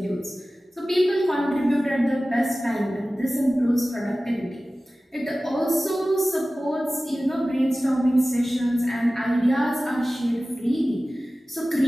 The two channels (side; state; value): both; normal; correlation 0.96